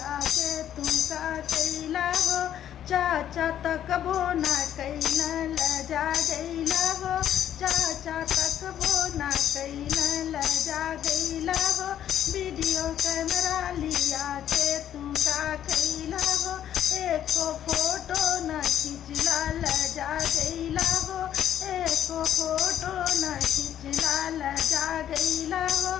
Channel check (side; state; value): right; quieter; 10.6 dB